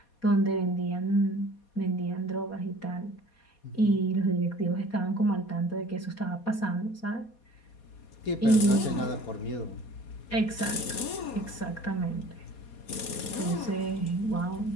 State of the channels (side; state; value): right; late; 4.2 ms